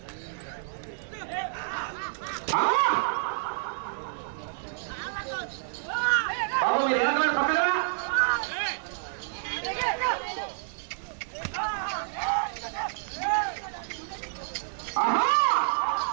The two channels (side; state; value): left; silent; digital silence